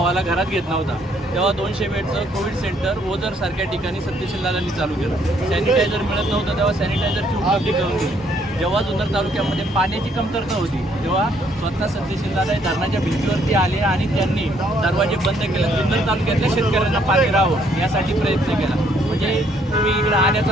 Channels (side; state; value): both; normal; correlation 0.67